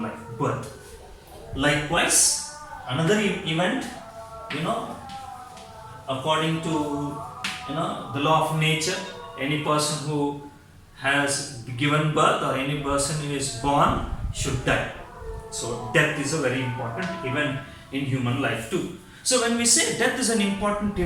life, birth. Likewise, another event, according to the law of nature, any person who has given birth or any person who is born should die. So death is a very important event in human life too. So when we say death is an important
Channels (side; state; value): both; identical; correlation 1.00